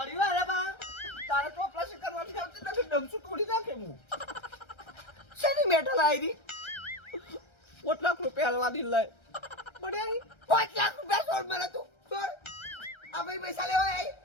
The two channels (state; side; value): late; right; 1.3 ms